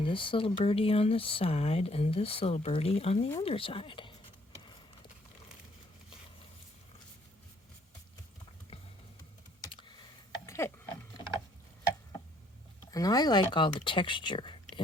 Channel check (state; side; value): normal; both; correlation 0.65